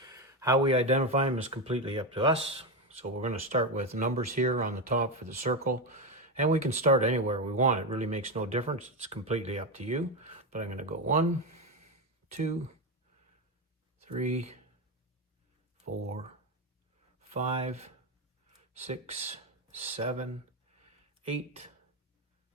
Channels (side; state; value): both; normal; correlation 0.12